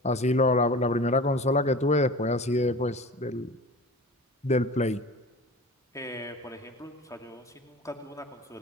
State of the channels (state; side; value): normal; both; correlation 0.37